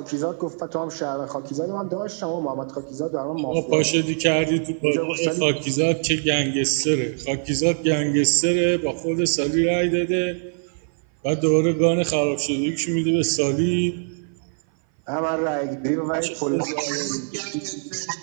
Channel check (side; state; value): left; silent; 59 dB below the other